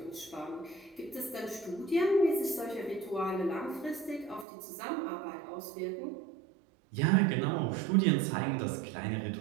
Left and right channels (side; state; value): left; drops out; at 4.5 s